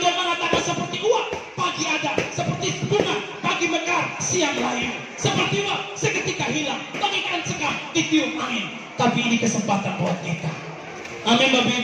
mengatakan seperti uap pagi ada, seperti bunga pagi mekar, siang layu. Seperti uap seketika hilang, bagaikan sekam ditiup angin. Tapi ini kesempatan buat kita. Amin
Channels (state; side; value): identical; both; correlation 1.00